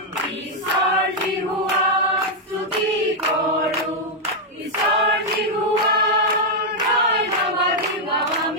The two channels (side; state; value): both; normal; correlation -0.02